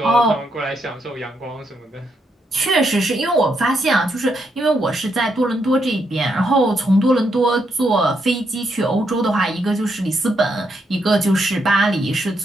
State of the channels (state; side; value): normal; both; correlation 0.79